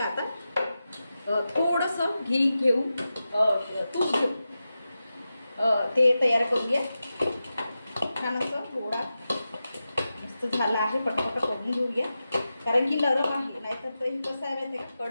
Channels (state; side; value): inverted; both; correlation -0.92